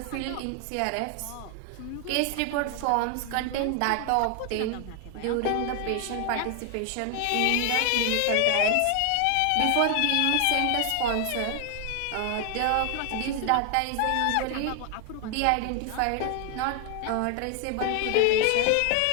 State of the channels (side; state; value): both; different; correlation 0.00